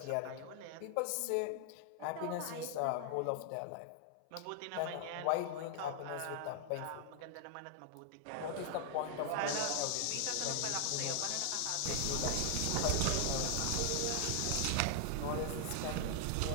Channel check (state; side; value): different; both; correlation 0.00